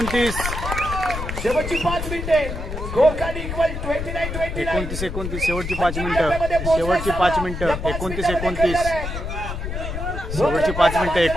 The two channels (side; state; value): left; noise; rumble, 5 dB below the sound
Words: शेवटची 5 मिनिटे. Score card equal 29-29. 29-29, शेवटची 5 मिनिटं. शेवटची 5 मिनिटं 29-29. शेवटची 5 मिनिटं